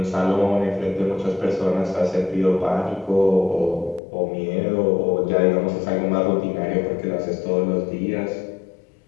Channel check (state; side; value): drops out; right; at 4.0 s